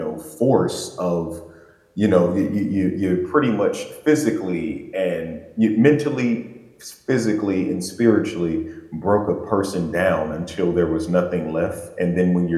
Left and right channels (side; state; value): both; identical; correlation 1.00